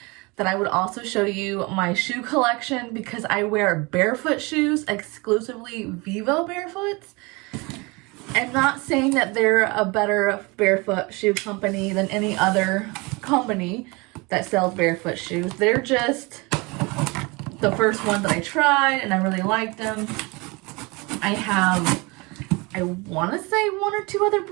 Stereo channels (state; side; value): quieter; left; 26.4 dB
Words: that I would also show you my shoe collection because I wear Barefoot shoes, exclusively Vivo Barefoots. I'm not saying that they're a better barefoot shoe company than any other company that sells barefoot shoes. They're just the first one that I tried and I really liked them. I want to say one or two other